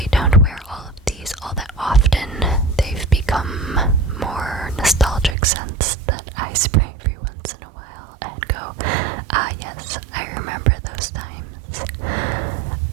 don't wear all of these all that often. They've become more nostalgic scents that I spray every once in a while and go, ah yes, I remember those times.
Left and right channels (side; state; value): left; drops out; at 5.4 s